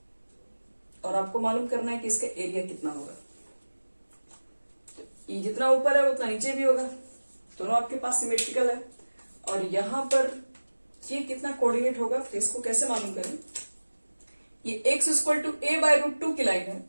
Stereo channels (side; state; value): both; inverted; correlation -1.00